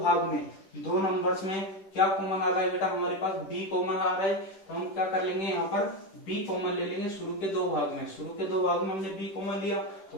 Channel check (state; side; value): late; right; 10 ms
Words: में, 2 नंबर्स में क्या कॉमन आ रहा है बेटा, हमारे पास b कॉमन आ रहा है। तो हम क्या कर लेंगे, यहाँ पर b कॉमन ले लेंगे शुरू के 2 भाग में। शुरू के 2 भाग में हमने b कॉमन लिया, तो